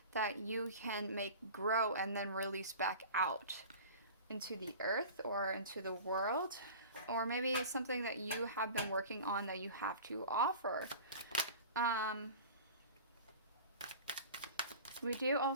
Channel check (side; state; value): both; inverted; correlation -0.38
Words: that you can make grow and then release back out into the earth or into the world. Or maybe it's something that you have been working on that you have to offer. We do